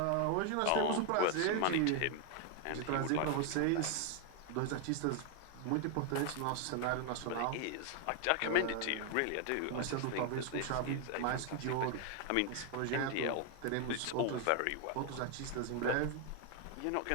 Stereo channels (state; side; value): different; both; correlation 0.00